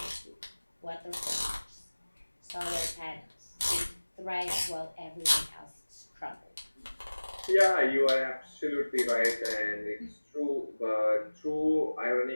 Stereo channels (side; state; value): both; inverted; correlation -1.00